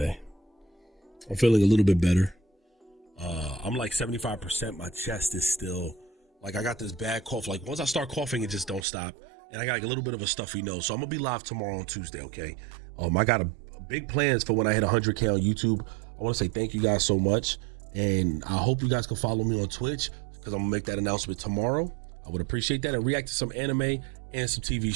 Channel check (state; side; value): drops out; left; at 8.8 s